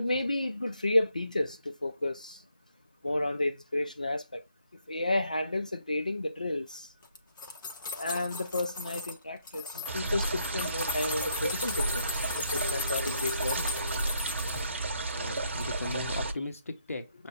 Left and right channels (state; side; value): inverted; both; correlation -0.74